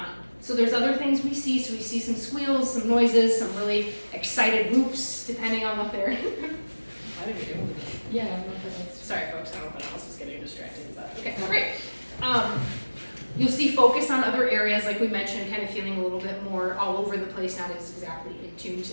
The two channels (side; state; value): both; inverted; correlation -1.00